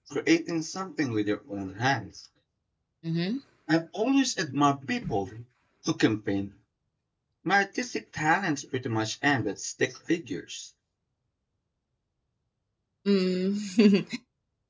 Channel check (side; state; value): both; identical; correlation 1.00